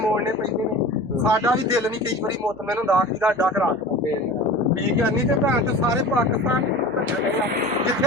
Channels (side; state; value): right; noise; hum, 24 dB below the sound